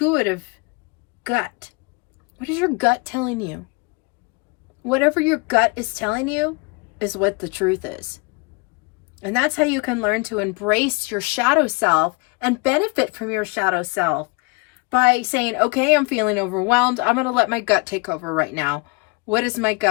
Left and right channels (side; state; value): right; quieter; 27.9 dB